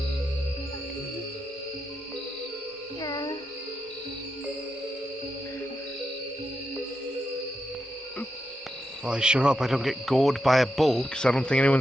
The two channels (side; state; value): both; normal; correlation 0.86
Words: Well, I sure hope I don't get gored by a bull, because I don't think